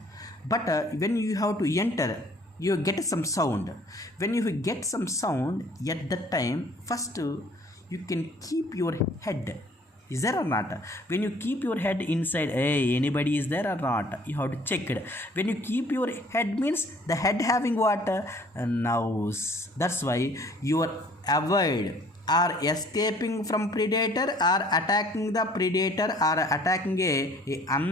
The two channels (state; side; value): normal; both; correlation 0.55